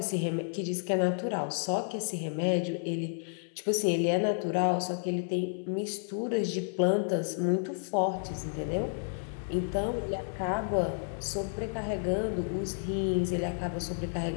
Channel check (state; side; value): silent; right; 57 dB below the other